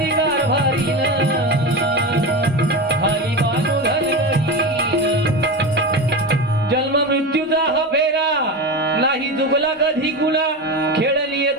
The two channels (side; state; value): both; normal; correlation 0.22